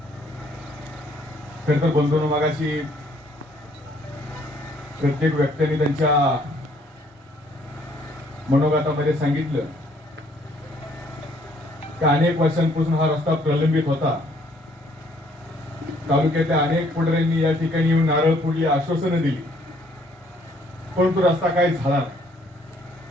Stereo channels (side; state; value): both; normal; correlation 0.64